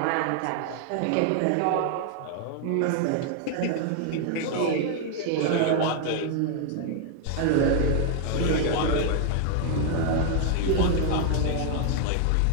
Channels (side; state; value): both; different; correlation 0.00